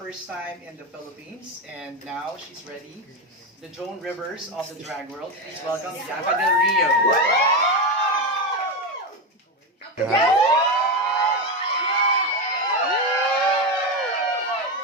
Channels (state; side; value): normal; both; correlation 0.13